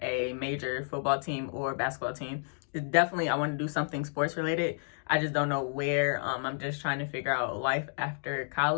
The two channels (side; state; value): right; silent; 57 dB below the other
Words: a major football team or basketball team. Definitely, I want to do something sports related. I just don't know where. I'm just trying to figure out life after